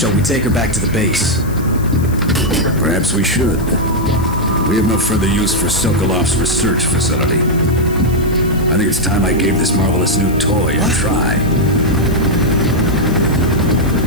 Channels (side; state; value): left; noise; hiss, 18 dB below the sound